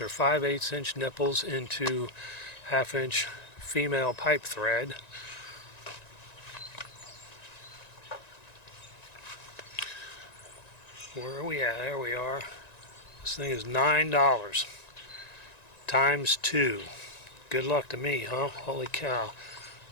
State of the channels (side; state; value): right; late; 1.9 ms